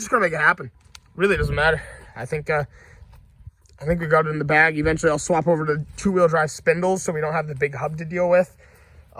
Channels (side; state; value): both; identical; correlation 1.00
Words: going to make it happen. Really doesn't matter. I think we got it in the bag. Eventually, I'll swap over to two-wheel drive spindles so we don't have the big hub to deal with.